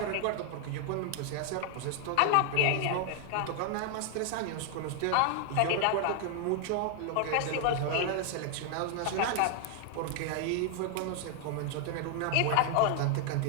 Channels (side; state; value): both; different; correlation 0.00